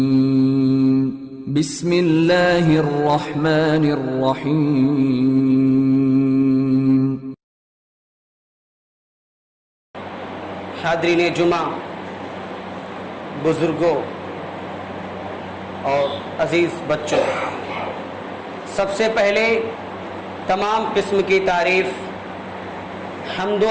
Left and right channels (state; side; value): identical; both; correlation 1.00